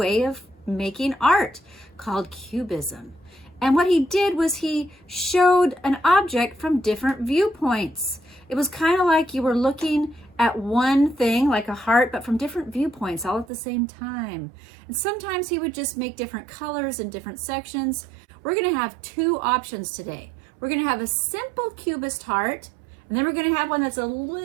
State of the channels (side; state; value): left; drops out; at 13.5 s